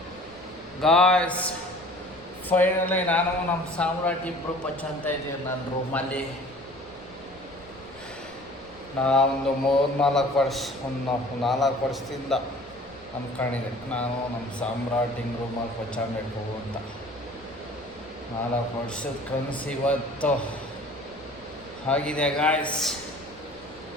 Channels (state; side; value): noise; left; rumble, 25 dB below the sound